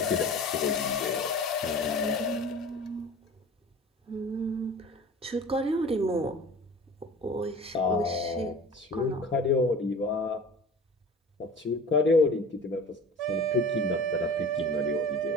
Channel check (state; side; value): normal; both; correlation 0.39